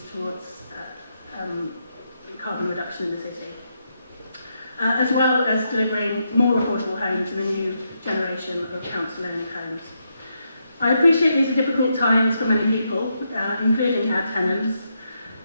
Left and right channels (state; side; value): inverted; both; correlation -0.81